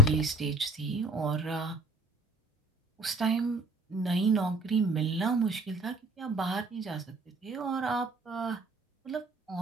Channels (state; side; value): normal; both; correlation 0.54